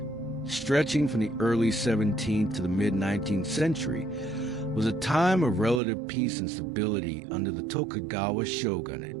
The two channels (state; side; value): drops out; left; at 5.8 s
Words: stretching from the early 17th to the mid-19th century, was a time of relative peace and stability under the Tokugawa shogunate.